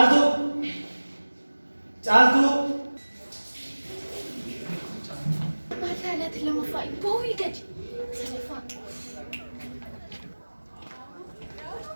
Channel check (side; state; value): both; inverted; correlation -1.00